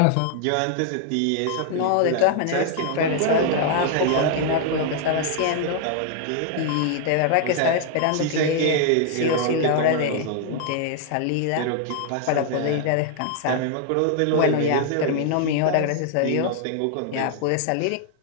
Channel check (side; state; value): both; different; correlation 0.00